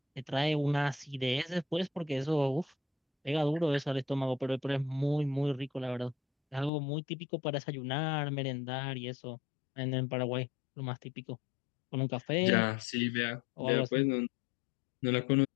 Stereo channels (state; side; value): drops out; right; at 6.7 s